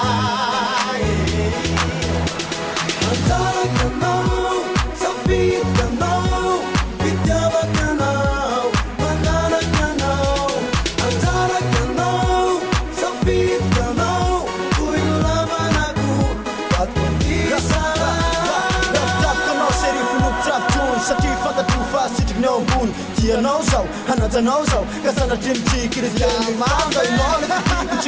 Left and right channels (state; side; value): identical; both; correlation 1.00